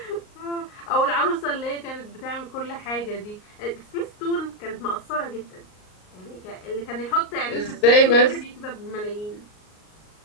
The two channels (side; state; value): right; late; 38 ms